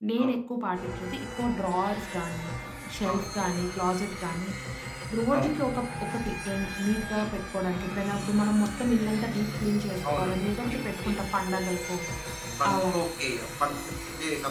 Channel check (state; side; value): identical; both; correlation 1.00